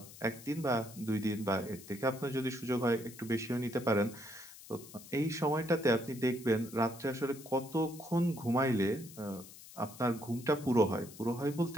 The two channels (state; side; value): noise; left; hiss, 17 dB below the sound